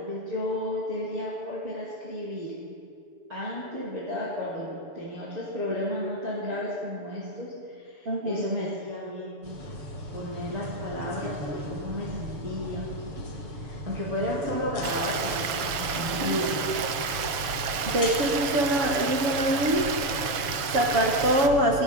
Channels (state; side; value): late; left; 7.0 ms